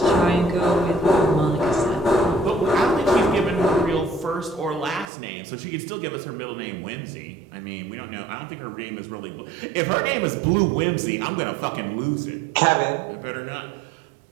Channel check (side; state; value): left; drops out; at 5.1 s